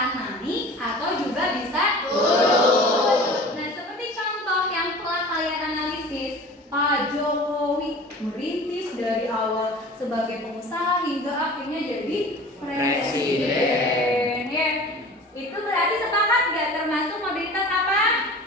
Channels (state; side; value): normal; both; correlation 0.41